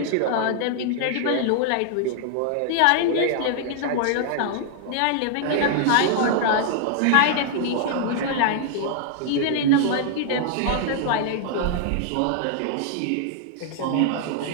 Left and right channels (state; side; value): different; both; correlation -0.01